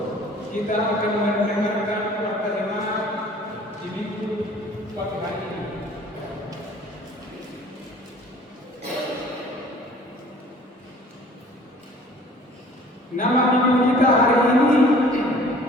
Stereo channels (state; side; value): normal; both; correlation 0.51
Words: Kita akan mendengarkan warta jemaat di minggu pagi hari ini. Nama minggu kita hari ini